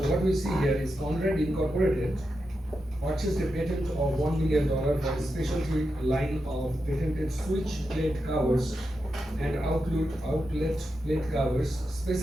what we see here is Conrad Incorporated purchased a patent of $1 million for a specialty line of patented switch plate covers and outlet plate covers,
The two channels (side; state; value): both; normal; correlation 0.88